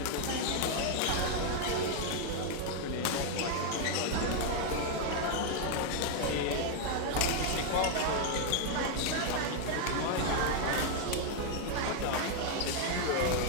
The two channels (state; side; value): different; both; correlation 0.00